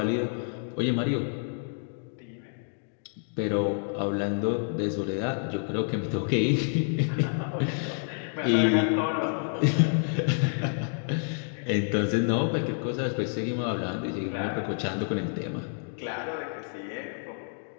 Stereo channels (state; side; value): silent; right; digital silence